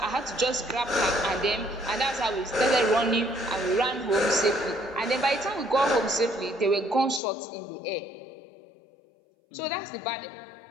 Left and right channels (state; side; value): drops out; right; at 7.2 s